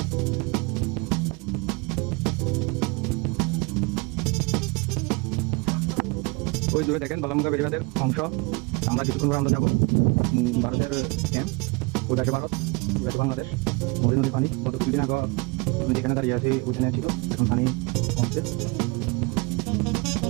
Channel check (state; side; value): quieter; left; 28.4 dB